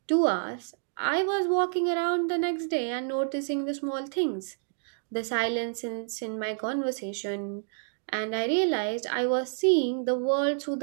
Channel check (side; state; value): left; silent; digital silence